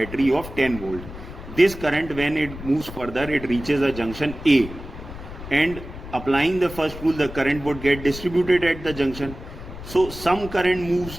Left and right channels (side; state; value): left; noise; rumble, 12 dB below the sound